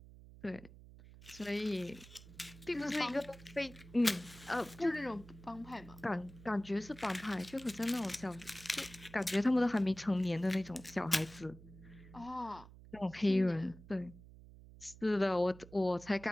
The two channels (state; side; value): noise; right; hum, 19 dB below the sound